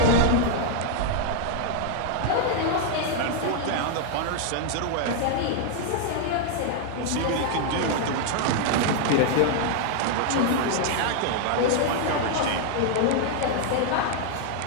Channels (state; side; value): different; both; correlation 0.00